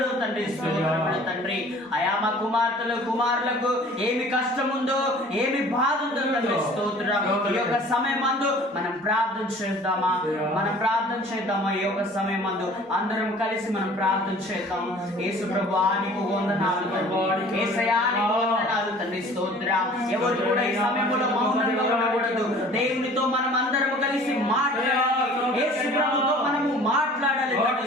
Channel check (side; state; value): both; normal; correlation 0.49